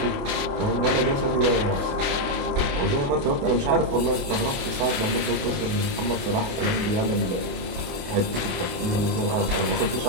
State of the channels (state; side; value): late; left; 28 ms